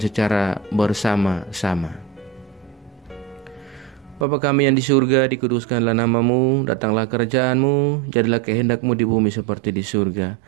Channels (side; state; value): left; drops out; at 4.2 s